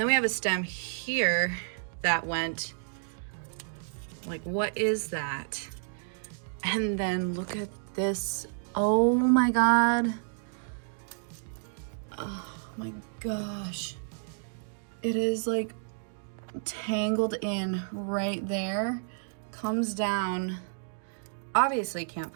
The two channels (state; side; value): silent; left; digital silence